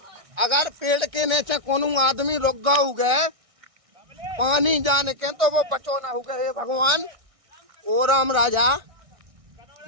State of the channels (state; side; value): late; left; 1.6 ms